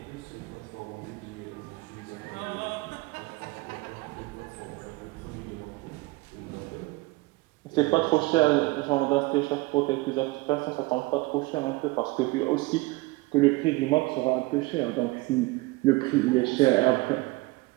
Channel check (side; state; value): left; quieter; 22.5 dB